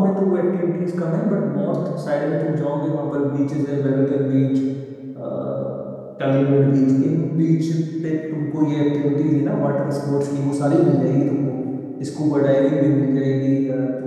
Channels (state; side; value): identical; both; correlation 1.00